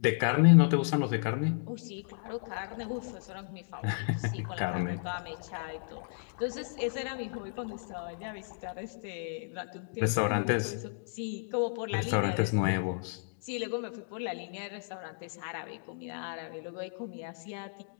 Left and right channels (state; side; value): silent; right; digital silence